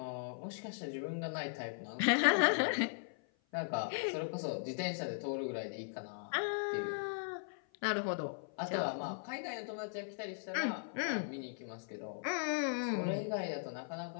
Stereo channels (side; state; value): right; silent; 52 dB below the other